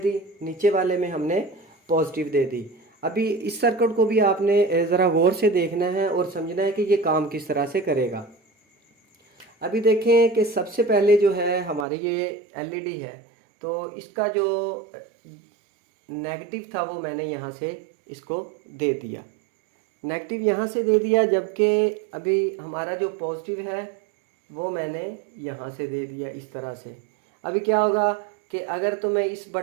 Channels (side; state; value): left; drops out; at 11.9 s